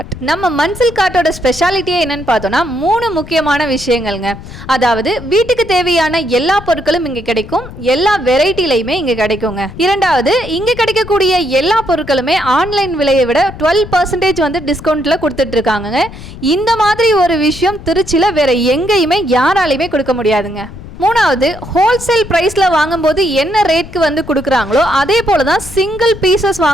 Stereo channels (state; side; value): noise; left; rumble, 14 dB below the sound